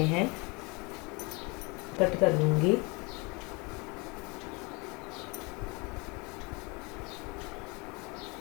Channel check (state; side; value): quieter; right; 28.3 dB